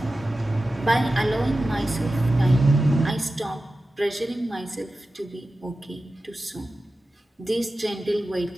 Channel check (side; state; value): both; normal; correlation 0.94